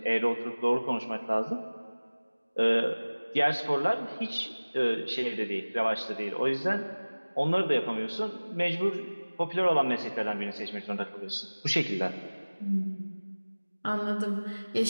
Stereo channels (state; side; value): inverted; both; correlation -1.00